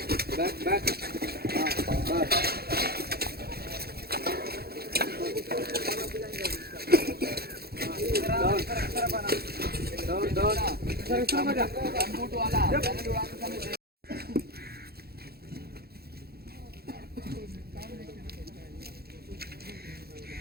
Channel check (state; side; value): late; left; 0.46 ms